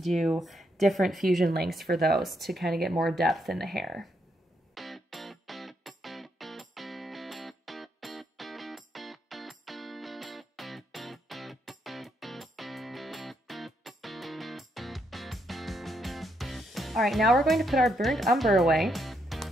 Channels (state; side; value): normal; both; correlation 0.77